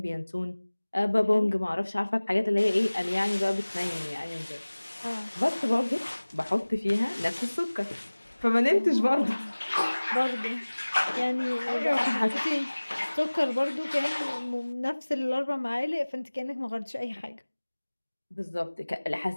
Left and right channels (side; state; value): both; inverted; correlation -1.00